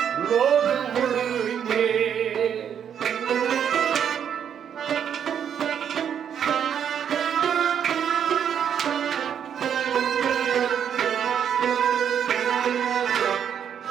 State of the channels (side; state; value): left; quieter; 8.5 dB